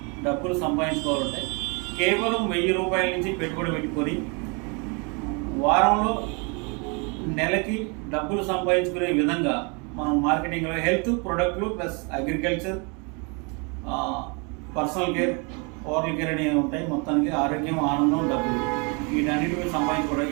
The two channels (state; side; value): quieter; left; 32.8 dB